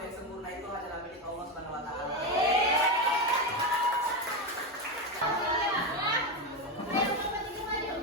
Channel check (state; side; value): normal; both; correlation 0.12